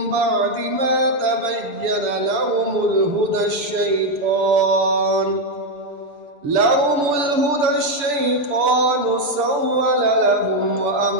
بعد ما تبين لهم الهدى الشيطان سول لهم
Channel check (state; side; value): late; left; 6.9 ms